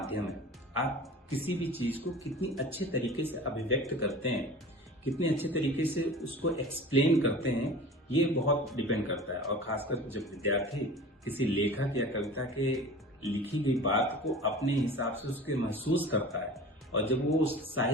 है। आप किसी भी चीज को कितनी अच्छे तरीके से अभिव्यक्त करते हैं, कितने अच्छे तरीके से उसको एक्सप्लेन करते हैं, ये बहुत डिपेंड करता है। और खासकर जब विद्यार्थी किसी लेखक या कविता के लिखी गई बात को अपने हिसाब से उसके महसूस करता है और जब वो उस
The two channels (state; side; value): normal; both; correlation 0.38